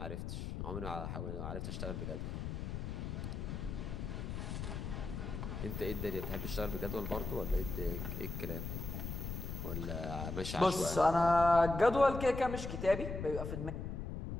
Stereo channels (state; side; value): noise; left; rumble, 5 dB below the sound